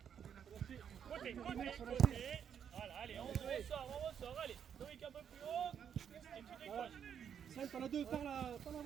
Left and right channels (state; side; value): quieter; left; 8.2 dB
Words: Côté. Voilà, allez, on ressort, allez. Loïc un peu plus haut. Et tu décroches. Sam, t'en as deux, par la